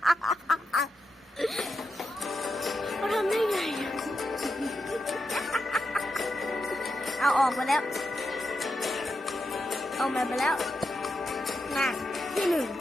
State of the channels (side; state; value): both; normal; correlation 0.86